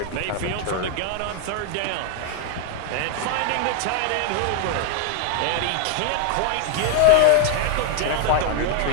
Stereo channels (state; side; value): different; both; correlation 0.00